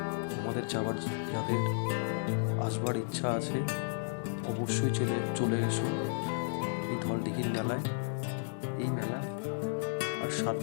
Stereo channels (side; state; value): right; silent; digital silence